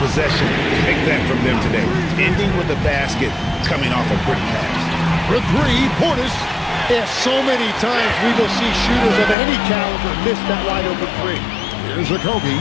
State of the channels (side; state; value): right; drops out; at 9.3 s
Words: possession like that from them today? Ending with a basket, coming off a pretty pass. For three, Portis. Yeah, so many times we will see shooters of any caliber miss that wide open three. Here's a Kobe.